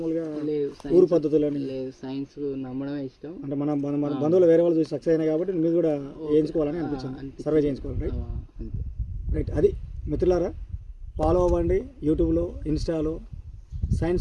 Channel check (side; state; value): both; identical; correlation 1.00